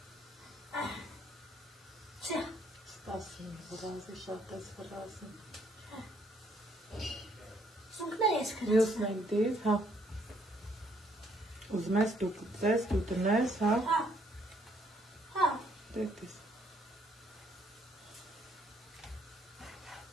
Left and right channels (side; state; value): both; normal; correlation 0.67